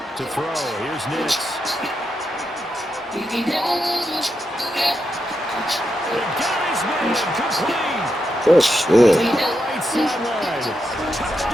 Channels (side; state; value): both; normal; correlation 0.85